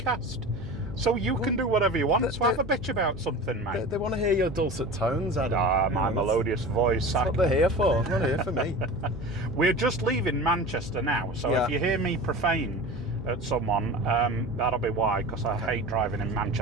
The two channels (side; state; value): right; noise; hum, 15 dB below the sound